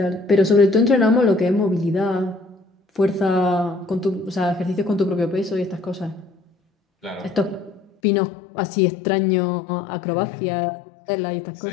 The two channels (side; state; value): right; drops out; at 7.9 s